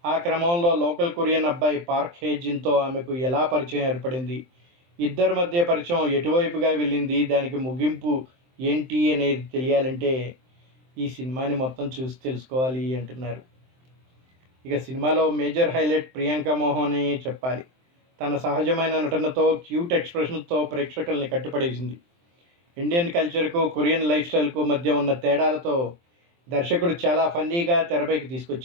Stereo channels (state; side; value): late; left; 23 ms